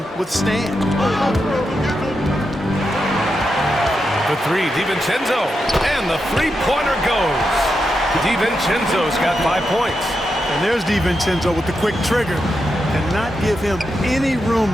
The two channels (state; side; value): normal; both; correlation 0.86